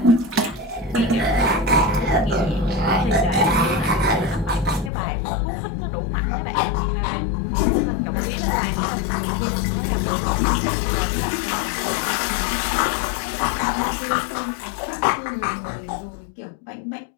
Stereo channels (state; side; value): drops out; right; at 4.9 s